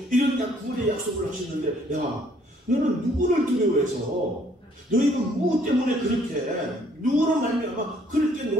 이런 구원의 약속을 하셨는데, 야, 너는 누구를 두려워해서, 너희가 무엇 때문에 그렇게 누구로 말미암아 그렇게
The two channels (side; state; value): both; normal; correlation 0.63